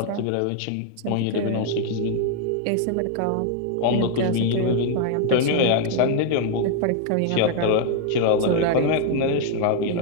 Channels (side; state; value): both; different; correlation 0.00